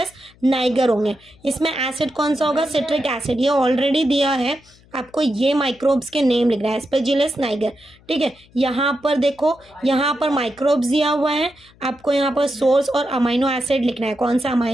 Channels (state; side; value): noise; left; hum, 28 dB below the sound